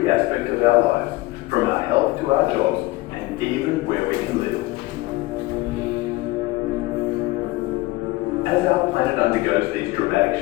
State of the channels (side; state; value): right; quieter; 20.0 dB